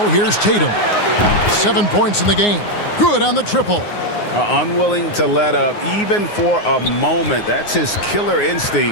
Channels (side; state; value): right; late; 9.6 ms